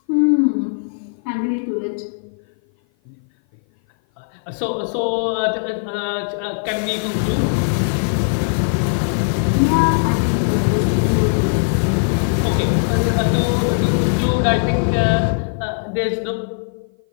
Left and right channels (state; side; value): silent; right; 56 dB below the other